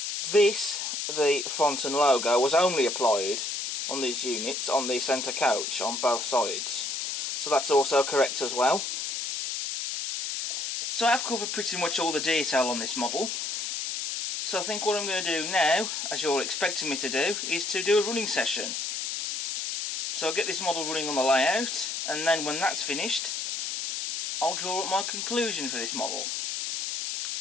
This, the font and logo, was only applied on these units on the centre coach on both sides, so that's also correct as well. So I've covered pretty much all the detail on this model, so I think what I'm going to do now, as you're all expecting me to do, is to do a running session. So I'll get this model running on the layout, and then when that's finished I'll draw up my conclusion for this model.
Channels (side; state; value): left; noise; hiss, 3 dB below the sound